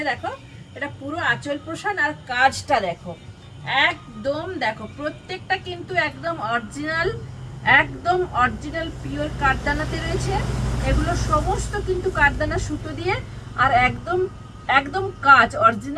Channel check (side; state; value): both; identical; correlation 1.00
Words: দেখো এটা পুরো আঁচল পোষণ। আর কাজটা দেখো, একদম দেখো প্রত্যেকটা কিন্তু একদম অরিজিনাল পিওর কাঠদানাতে রয়েছে। এগুলো সমস্ত কিন্তু কাঠদানা সুতো দিয়ে, আর একদম একদম কাজ,